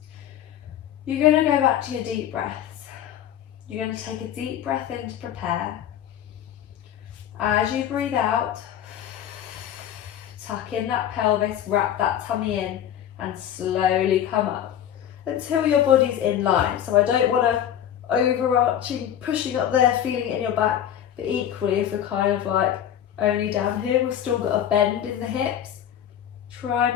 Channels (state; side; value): quieter; right; 10.4 dB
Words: You're going to go back to your deep breaths. You're going to take a deep breath in to prepare. As you breathe out, tuck in that pelvis, wrap that tummy in, and slowly come up until your body's in line. So I don't want to overarching, pushing up there, feeling it in your back, but equally if we're kind of like only down here, we've still got a bend in the hips. Try